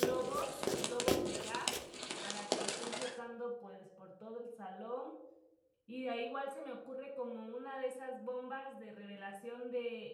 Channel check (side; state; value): both; identical; correlation 1.00